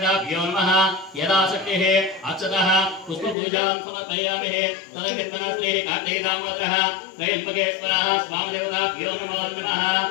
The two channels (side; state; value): right; drops out; at 3.4 s